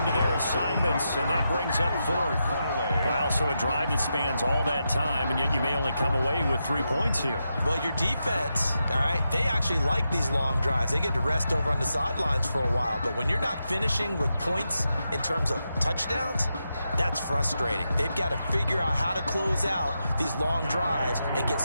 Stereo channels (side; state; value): both; inverted; correlation -0.86